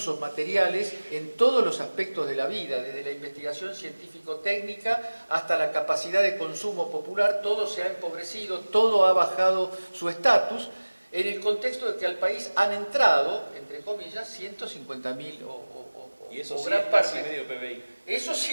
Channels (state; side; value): inverted; both; correlation -1.00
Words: materiales en todos los aspectos de la vida, desde la investigación científico-técnica hasta la capacidad de consumo popular. Todo se ha empobrecido, todo ha bajado su estatus, en el contexto de que al país han entrado, entre comillas, 150.000 y eso o sí gran es parte. casi medio PBI. Eso